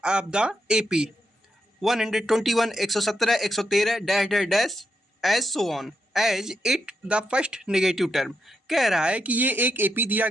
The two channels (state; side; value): normal; both; correlation 0.83